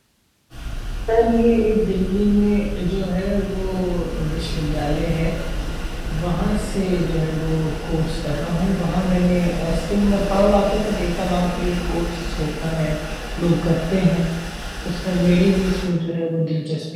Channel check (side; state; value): both; identical; correlation 1.00